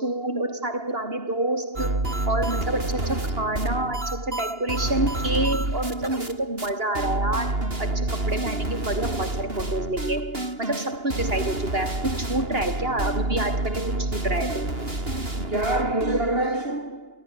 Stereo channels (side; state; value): left; late; 2.8 ms